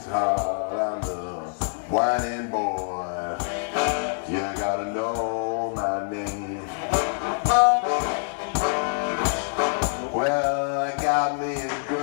hard. I'm the whining boy. You gotta know my name. Well, I got me a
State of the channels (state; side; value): silent; right; digital silence